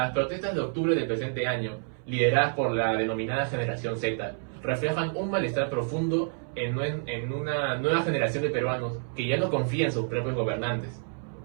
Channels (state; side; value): silent; left; 59 dB below the other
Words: protestas de octubre del presente año, lideradas por la denominada generación Z, reflejan un malestar profundo en una nueva generación de peruanos que ya no confían en sus propios gobernantes.